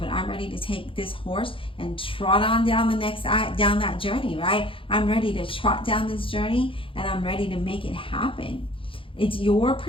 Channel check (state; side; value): late; right; 0.25 ms